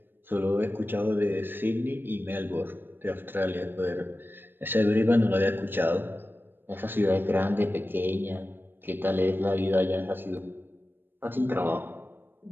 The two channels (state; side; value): late; left; 0.097 ms